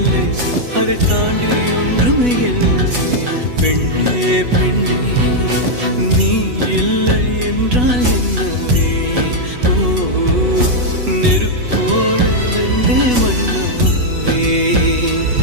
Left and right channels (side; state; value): left; late; 8.1 ms